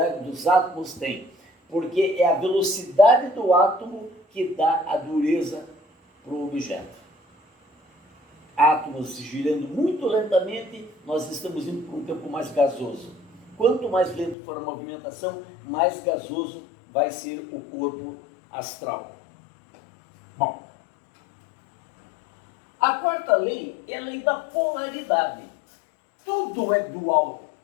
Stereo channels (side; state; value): right; drops out; at 14.4 s